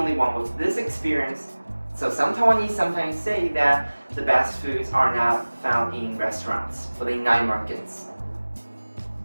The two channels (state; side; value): inverted; both; correlation -1.00